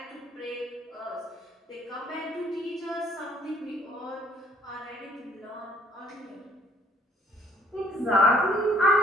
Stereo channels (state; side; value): normal; both; correlation 0.61